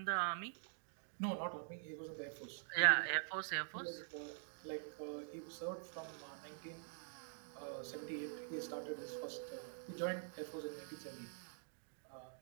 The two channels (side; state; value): left; silent; digital silence